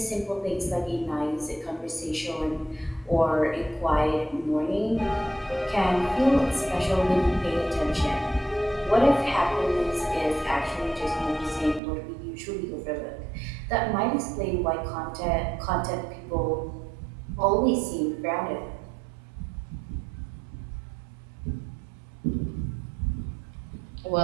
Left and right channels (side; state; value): left; drops out; at 11.8 s